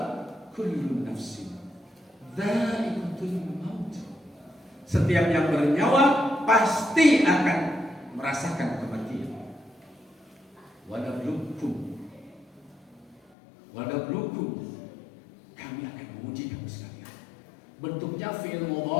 kullu nafsin dha'iqatul maut. Setiap yang bernyawa pasti akan merasakan kematian. Walablukum, kami akan menguji kamu sekalian. Bentuknya fi'il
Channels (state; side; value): drops out; right; at 13.2 s